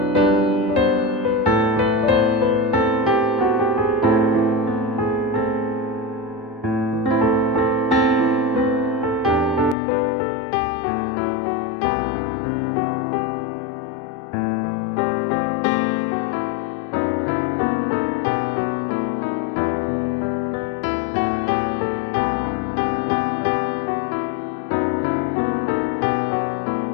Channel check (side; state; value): right; drops out; at 9.8 s